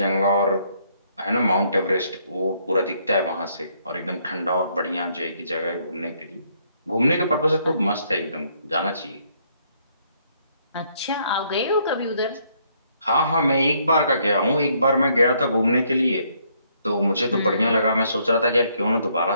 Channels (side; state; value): both; inverted; correlation -0.70